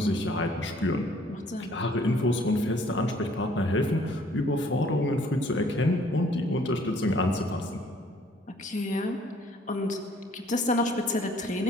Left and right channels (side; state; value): both; normal; correlation 0.59